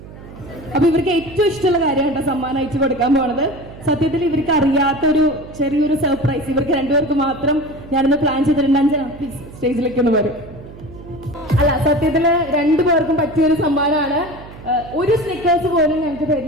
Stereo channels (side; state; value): right; noise; hum, 17 dB below the sound